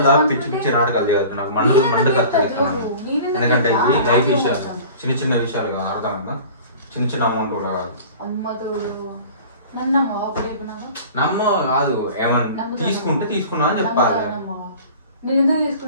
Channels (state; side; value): inverted; both; correlation -0.42